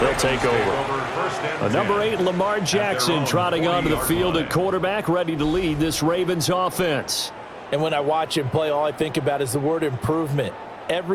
take over. Number 8, Lamar Jackson, trotting onto the field at quarterback, ready to lead this Ravens offense. And when I watch him play, all I think about is the word improvement.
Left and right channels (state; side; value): identical; both; correlation 1.00